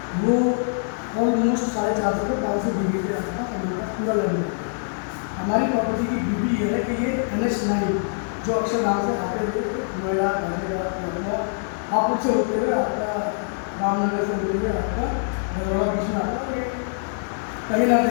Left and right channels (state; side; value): silent; right; 63 dB below the other